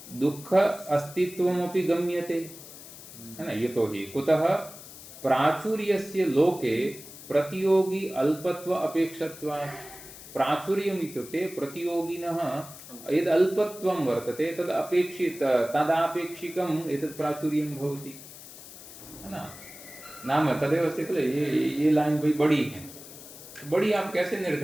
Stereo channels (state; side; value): noise; left; hiss, 16 dB below the sound